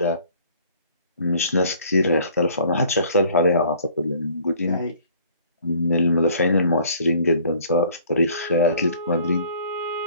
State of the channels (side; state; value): both; inverted; correlation -0.55